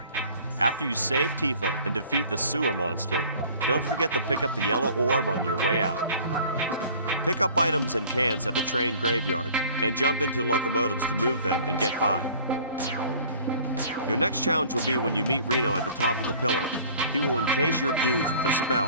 After you save Tifa and defeat the sewer monster, don't forget to pick up the yellow orb on your way out. Pick up items and cans at the train graveyard and jump into locomotives to move them and get by. Your next challenge will be when you meet Reno at the top of the pillar. He will encase your dudes with a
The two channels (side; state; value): both; inverted; correlation -0.50